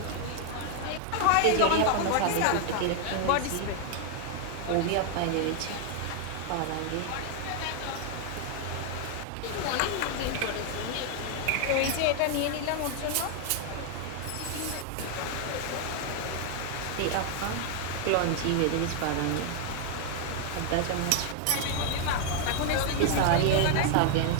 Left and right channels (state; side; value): different; both; correlation 0.00